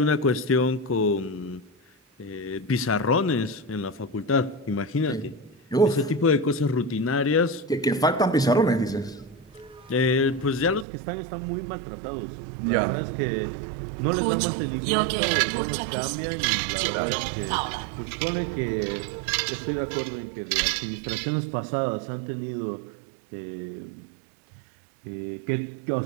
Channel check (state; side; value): drops out; left; at 10.9 s